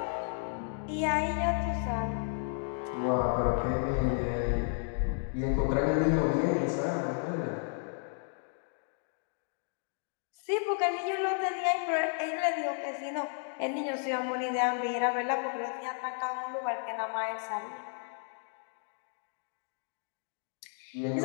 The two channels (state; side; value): silent; right; 56 dB below the other